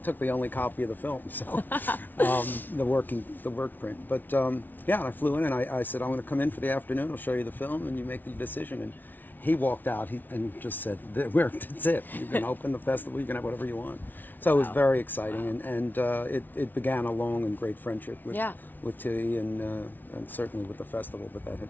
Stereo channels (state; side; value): late; right; 0.086 ms